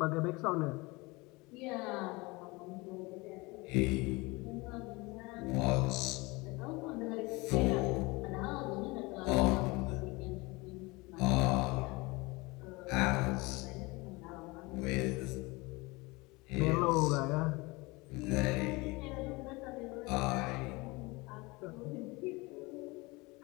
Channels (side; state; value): right; quieter; 24.3 dB